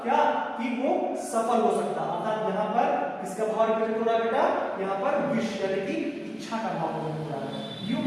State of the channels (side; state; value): both; identical; correlation 1.00